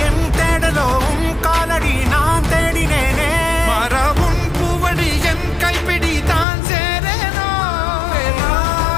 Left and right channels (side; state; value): right; drops out; at 6.5 s